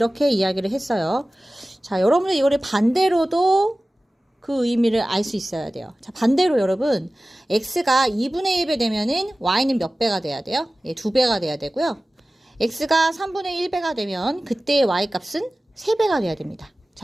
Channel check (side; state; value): both; normal; correlation 0.97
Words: 이야기를 했어요. 자, 여러분들 이거를 반대로도 그 의미를 알 수 있어야 돼요. 자, 반대로 여러분, x가 2분의 1배 되면은 y는 몇 배가 돼야 돼요? 예, 2배가 돼야 되고요. x가 3분의 1배가 되면 그때의 y 값은 3배가 돼야 됩니다.